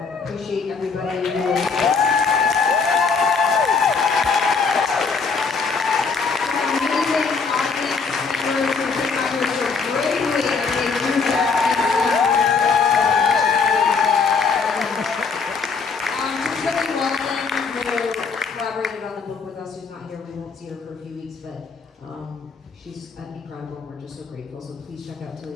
appreciate everybody who amazing audience members who came out here so bravely and they do that. Just really Walden, who collaborated on the book with us, who's not here. We won't see her for a few weeks, but she's incredible, and we're just so grateful. So please check out Tilly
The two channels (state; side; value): quieter; right; 4.9 dB